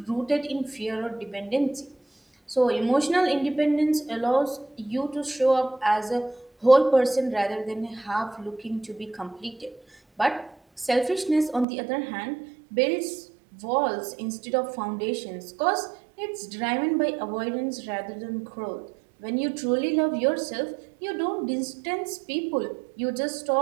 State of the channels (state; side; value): drops out; left; at 11.7 s